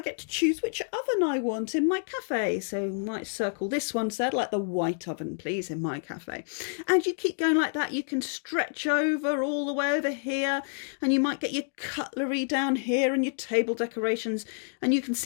get to choose which oven I want in my cafe. So I might circle this one, so I'd like the white oven, please, in my cafe. And you keep going like that. You can stretch over all the way over here, and you might get your cutlery down here and your table decorations. And you can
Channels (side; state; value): right; silent; digital silence